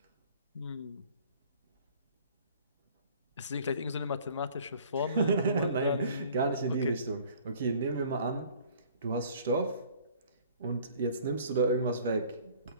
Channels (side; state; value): both; inverted; correlation -0.53